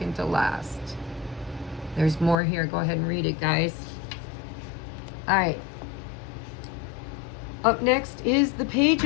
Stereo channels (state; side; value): drops out; right; at 2.4 s